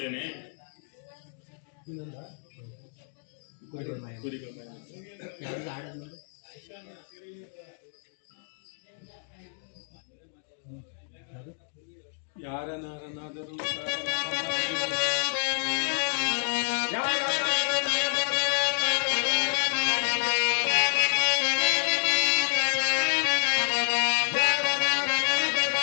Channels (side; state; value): right; silent; 59 dB below the other